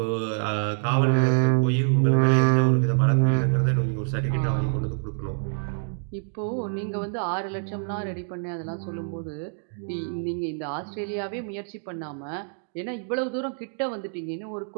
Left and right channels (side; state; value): left; silent; 61 dB below the other